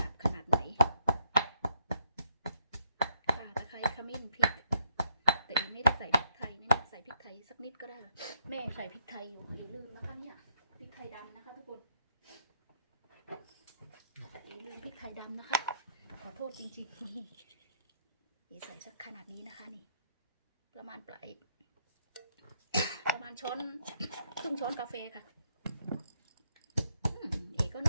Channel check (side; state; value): both; inverted; correlation -0.76